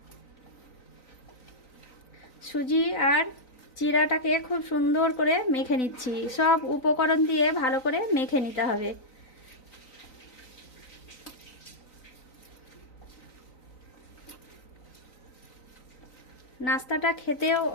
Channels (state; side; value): late; right; 3.9 ms